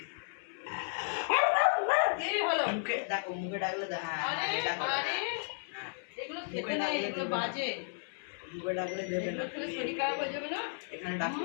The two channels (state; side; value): silent; right; 55 dB below the other